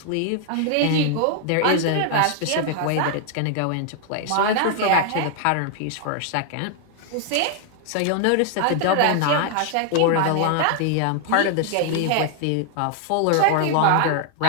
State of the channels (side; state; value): both; different; correlation 0.00